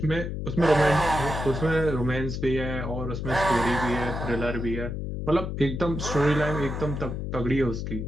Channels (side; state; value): left; noise; hum, 4 dB below the sound